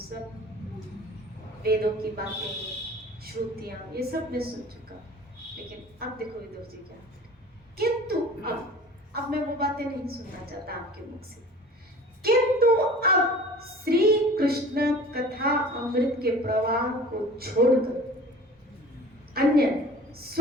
वेदों की बातें, श्रुतियां, ये सब मैं सुन चुका। लेकिन अब देखो विदुर जी क्या, किंतु अब मैं वो बातें नहीं सुनना चाहता आपके मुख से, किंतु अब श्री कृष्ण कथा अमृत के प्रवाह को छोड़कर अन्य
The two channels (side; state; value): both; normal; correlation 0.43